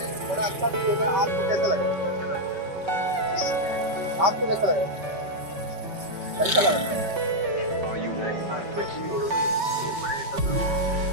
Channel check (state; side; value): late; left; 5.3 ms